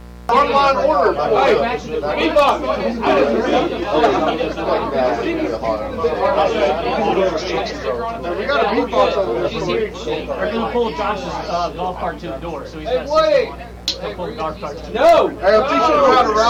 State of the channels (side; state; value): both; identical; correlation 1.00